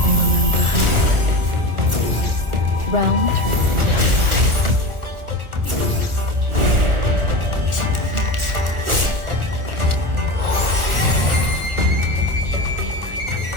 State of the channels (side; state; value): left; late; 1.3 ms